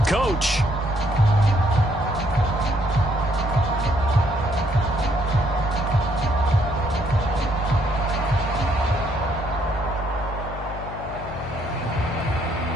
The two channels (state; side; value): noise; left; hum, 11 dB below the sound